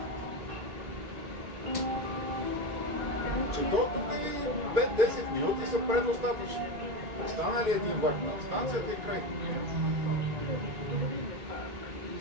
Че до тук и 5-10 минути са предостатъчни. Остана ли един влак на станцията и край? И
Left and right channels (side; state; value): left; late; 1.9 ms